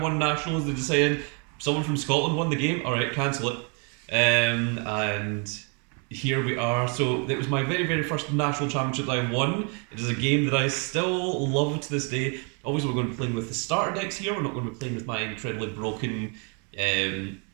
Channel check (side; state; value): left; quieter; 36.4 dB